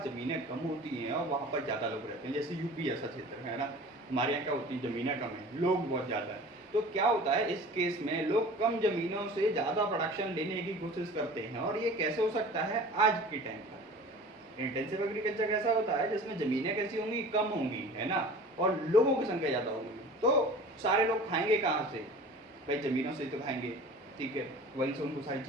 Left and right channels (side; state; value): both; normal; correlation 0.41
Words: ज़मीनें कम होती हैं और वहाँ पर ज़्यादा लोग रहते हैं, जैसे यूपी ऐसा क्षेत्र है ना, हमारे यहाँ क्या होती है, ज़मीनें कम है, लोग बहुत ज़्यादा है। तो क्या होता है इस केस में, लोग कम ज़मीनों से ज़्यादा प्रोडक्शन लेने की कोशिश करते हैं, और ये कैसे हो सकता है, आज के टाइम पर इंटेंसिव एग्रीकल्चर कैसा होता है जिसमें ज़मीनें कैसी होंगी, कम होंगी, है ना, और लोगों की संख्या ज़्यादा होगी, तो सारे लोग खाएंगे कहाँ से, भाई ज़मीनों से तो खाएंगे, ठीक है, वहीं से उनको सारी